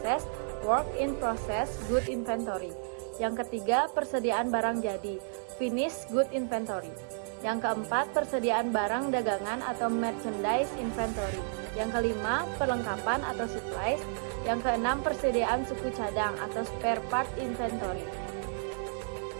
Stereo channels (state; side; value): silent; left; 56 dB below the other